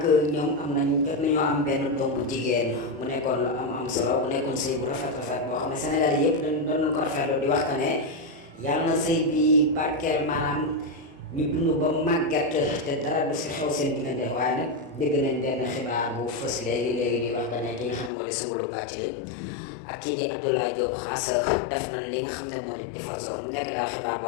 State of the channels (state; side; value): drops out; right; at 18.1 s